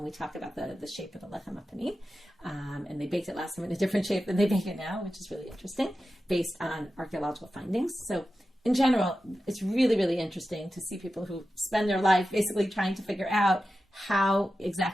we talk about the shape of the lechem hapanim. And they baked it last time in a different shape than they bake it now, which is really interesting, based on archaeological findings. So in general, it's really, really interesting to see people who spend their life basically trying to figure out how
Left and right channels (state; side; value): normal; both; correlation 0.92